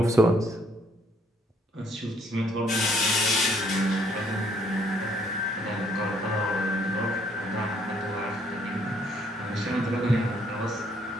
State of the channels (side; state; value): both; normal; correlation 0.66